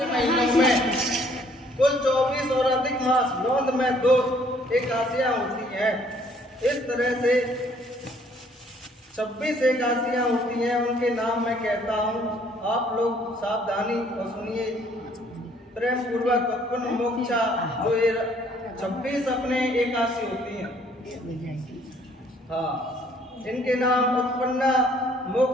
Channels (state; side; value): normal; both; correlation 0.62